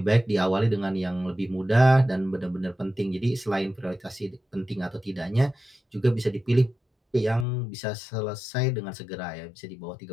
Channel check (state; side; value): drops out; right; at 7.5 s